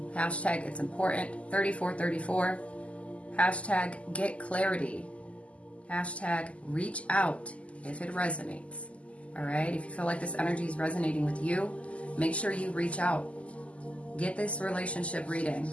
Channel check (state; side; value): late; right; 0.063 ms